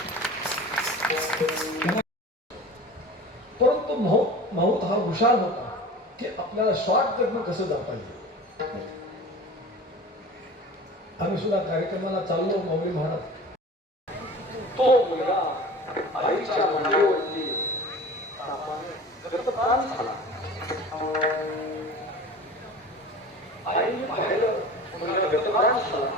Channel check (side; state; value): both; normal; correlation 0.38